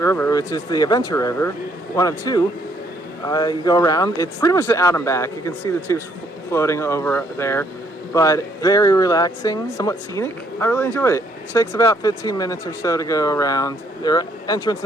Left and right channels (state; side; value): normal; both; correlation 0.68